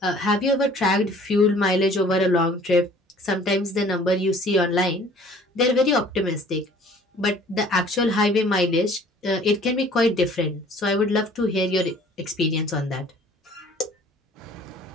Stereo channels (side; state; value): both; normal; correlation 0.52